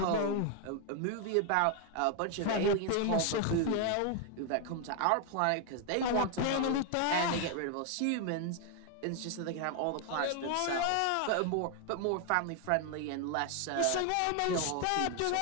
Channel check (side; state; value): both; different; correlation 0.01